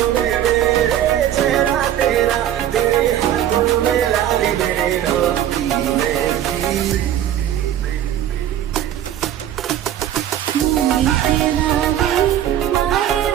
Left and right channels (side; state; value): left; quieter; 11.3 dB